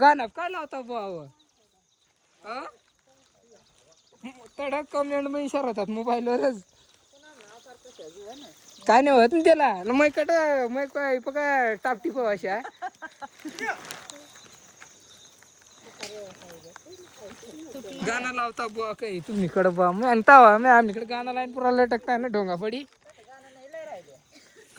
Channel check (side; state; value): both; identical; correlation 1.00